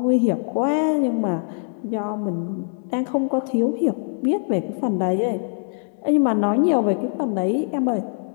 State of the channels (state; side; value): silent; right; 64 dB below the other